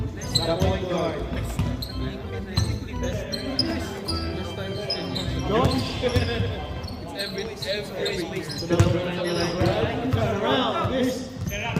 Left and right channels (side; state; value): both; identical; correlation 1.00